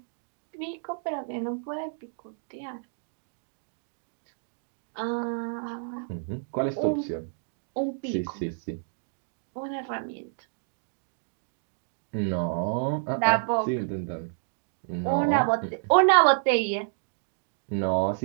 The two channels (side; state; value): left; silent; digital silence